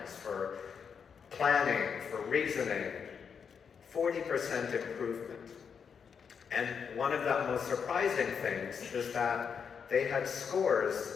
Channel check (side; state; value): right; quieter; 6.6 dB